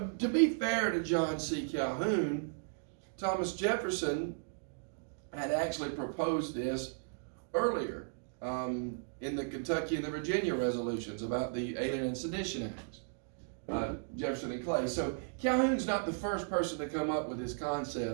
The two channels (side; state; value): left; silent; digital silence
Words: to be fair to John C. Calhoun, Thomas Jefferson had actually proposed this earlier in the Kentucky and the Virginia resolutions about the Alien and Sedition Acts, Jefferson and Clay. So Calhoun's not the first person to come up with this